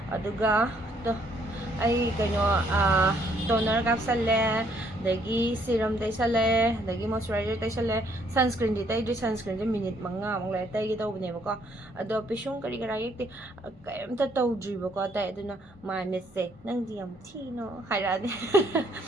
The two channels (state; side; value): normal; both; correlation 0.67